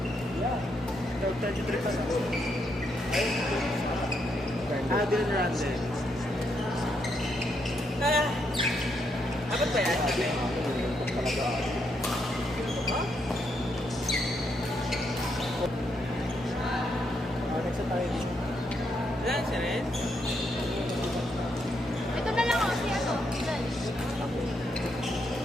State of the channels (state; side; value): normal; both; correlation 0.78